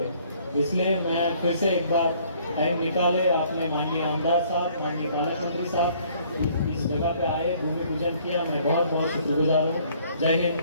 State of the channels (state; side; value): inverted; both; correlation -0.60